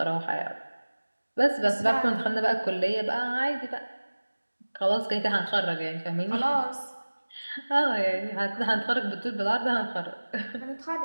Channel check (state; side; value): inverted; both; correlation -1.00